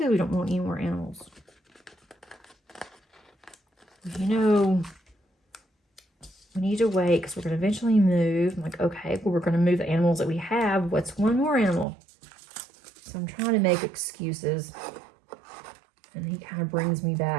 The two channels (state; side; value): drops out; left; at 11.9 s